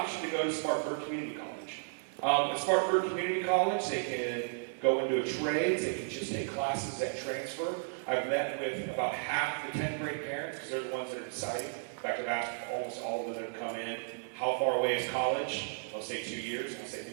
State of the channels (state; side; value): silent; left; digital silence